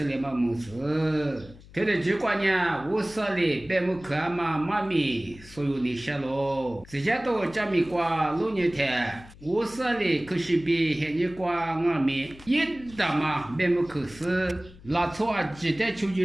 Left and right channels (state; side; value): noise; left; hum, 21 dB below the sound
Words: 了嘛没事。他的结果呢，我说的别没看嘛，妈咪，所有你下喽，这些都加米瓜6年天，我说的可是比现在瓜我们一大嘛，别没可是，那错啊，记得求求